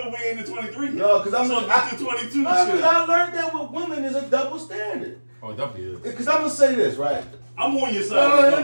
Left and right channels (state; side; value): inverted; both; correlation -1.00